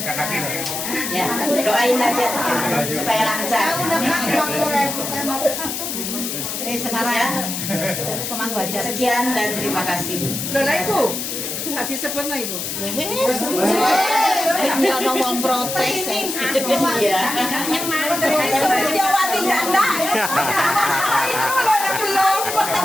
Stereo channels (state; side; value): noise; left; hiss, 4 dB below the sound